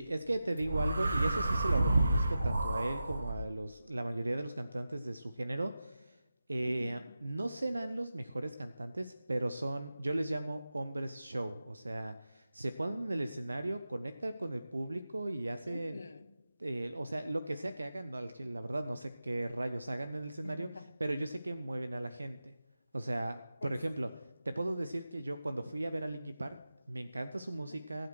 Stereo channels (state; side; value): inverted; both; correlation -0.93